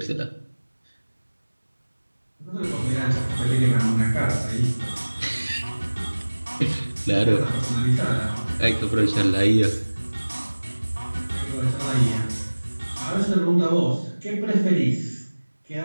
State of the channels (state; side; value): inverted; both; correlation -1.00